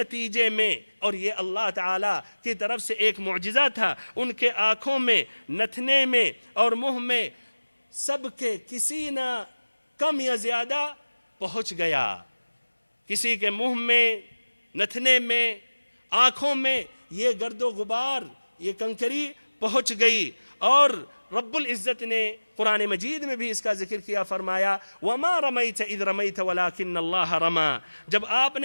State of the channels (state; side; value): inverted; both; correlation -1.00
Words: میں، اور یہ اللہ تعالیٰ کی طرف سے ایک معجزہ تھا، ان کے آنکھوں میں، نتھنے میں اور منہ میں سب کے کسی نہ کم یا زیادہ پہنچ گیا، کسی کے منہ میں، نتھنے میں، آنکھوں میں یہ گرد و غبار، یہ کنکری پہنچ گئی۔ اور رب العزت نے قرآن مجید میں بھی اس کا ذکر کیا، فرمایا وَمَا رَمَيْتَ إِذْ رَمَيْتَ وَلَكِنَّ اللَّهَ رَمَى، جب آپ